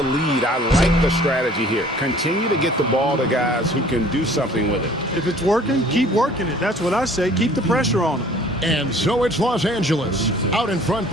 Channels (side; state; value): both; normal; correlation 0.52